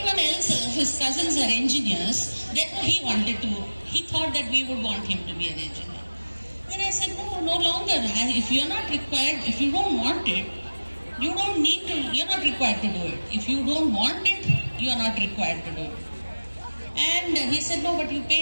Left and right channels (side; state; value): both; inverted; correlation -1.00